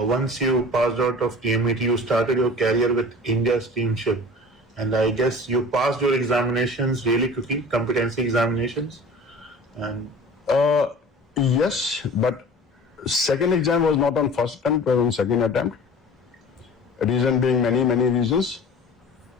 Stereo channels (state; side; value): normal; both; correlation 0.41